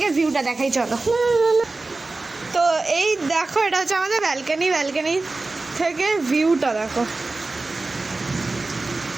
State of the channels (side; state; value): left; quieter; 3.4 dB